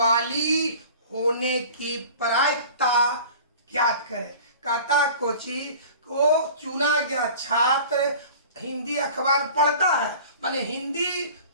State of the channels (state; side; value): inverted; both; correlation -0.42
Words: होने की प्रायिकता ज्ञात करें। कहता कोची को चुना गया छात्र हिंदी अखबार पढ़ता है, माने हिंदी